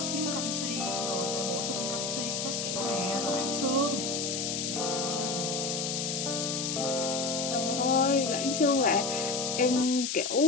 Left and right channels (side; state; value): left; noise; hiss, 2 dB below the sound